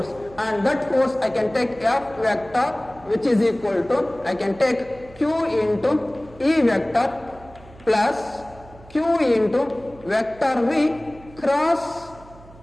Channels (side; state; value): right; noise; hum, 22 dB below the sound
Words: and that force I can take F vector which is equal to, I can take Q into E vector plus Q into vector V cross